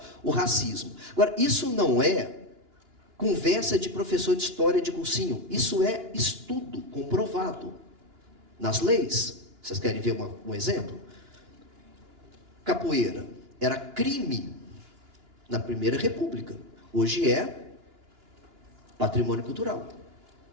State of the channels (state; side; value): late; left; 2.9 ms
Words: o racismo. Agora, isso não é conversa de professor de história de cursinho. Isso é estudo comprovado nas leis. Vocês querem ver um exemplo? Capoeira era crime na Primeira República. Hoje é patrimônio cultural.